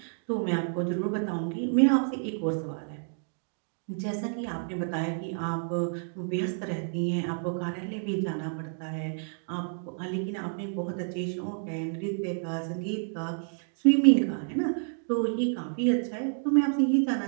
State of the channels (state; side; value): silent; left; digital silence